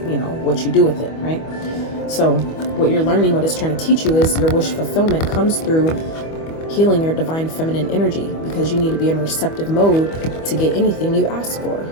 you know, what you do with it, right? So what you're learning, what it's trying to teach you, is your wish fulfillment comes through healing your divine feminine energy, because you need to be in a receptive mode to get anything you ask for,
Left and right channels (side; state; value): right; late; 25 ms